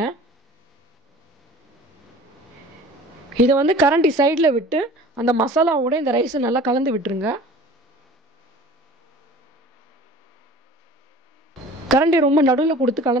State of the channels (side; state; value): both; normal; correlation 0.43